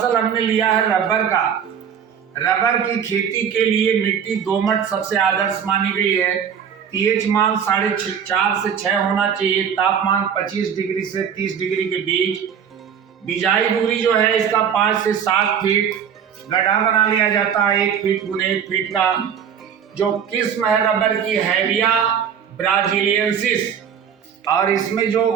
हमने लिया है रबर का। रबर की खेती के लिए मिट्टी दोमट सबसे आदर्श मानी गई है। पीएच मान 4.5 से 6 होना चाहिए। तापमान 25 डिग्री से 30 डिग्री के बीच। बिजाई दूरी जो है इसका 5 से 7 फीट। गड्ढा बना लिया जाता है 1 फीट गुने 1 फीट का। जो किस्म है रबर की हैविया ब्राजीलियंसिस, और इसमें जो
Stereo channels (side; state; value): left; quieter; 7.9 dB